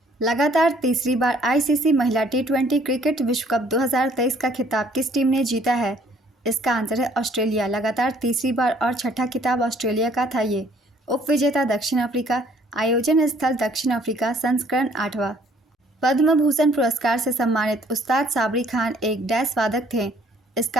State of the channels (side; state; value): both; normal; correlation 0.61